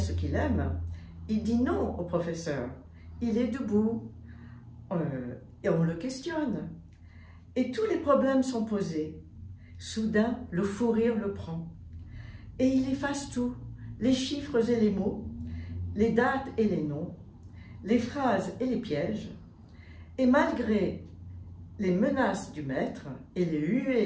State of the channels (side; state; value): both; identical; correlation 1.00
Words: qu'il aime, il dit non au professeur. Il est debout et on le questionne. Et tous les problèmes sont posés. Soudain, le fou rire le prend. Et il efface tout, les chiffres et les mots, les dates et les noms, les phrases et les pièges. Et malgré les menaces du maître et les